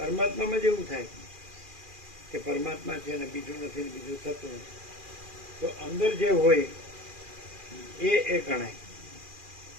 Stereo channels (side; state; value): left; late; 2.4 ms